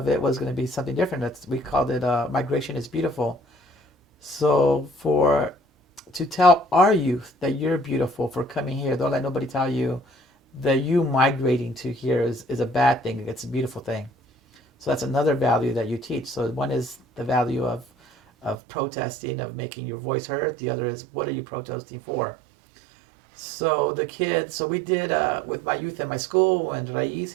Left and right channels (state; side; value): drops out; left; at 18.6 s